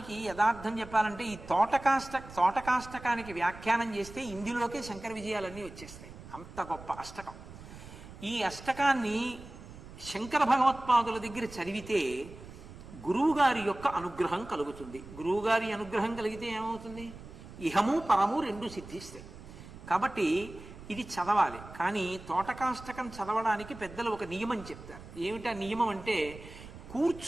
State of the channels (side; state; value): right; noise; rumble, 16 dB below the sound